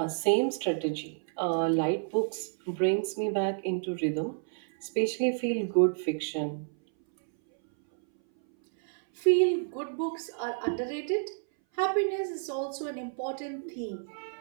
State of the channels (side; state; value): left; silent; 58 dB below the other